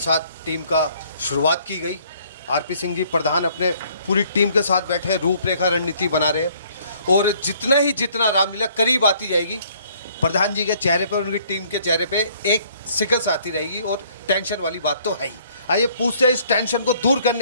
टीम का शुरुआत की गई। आरपी सिंह जी प्रधान अपने पूरी टीम के साथ बैठे हैं, रूपरेखा रणनीति बना रहे हैं। और जितना रामलीला करीब आती जाएगी, प्रधान जी के चेहरे पर, उनकी टीम के चेहरे पे एक सिकस आती रहेगी और टेंशन वाली बात तो है ही। आइए पूछते हैं इस टेंशन को दूर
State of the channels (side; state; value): both; inverted; correlation -0.61